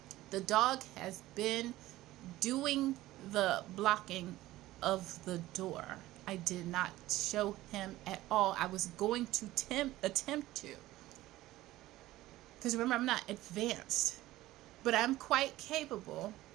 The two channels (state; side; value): quieter; left; 16.4 dB